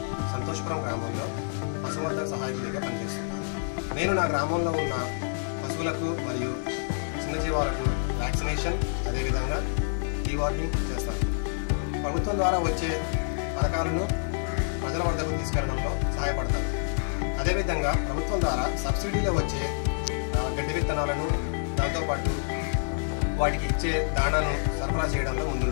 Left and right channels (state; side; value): silent; right; 60 dB below the other